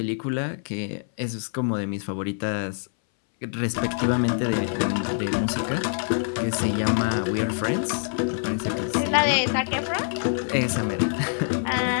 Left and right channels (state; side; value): silent; right; 62 dB below the other